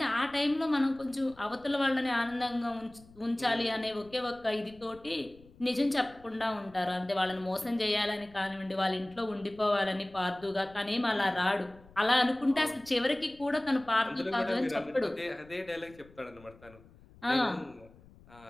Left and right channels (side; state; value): left; noise; rumble, 24 dB below the sound